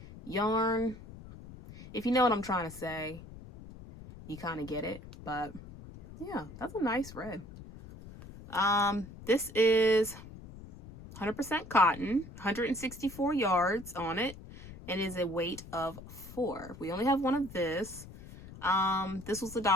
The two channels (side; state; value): left; noise; rumble, 16 dB below the sound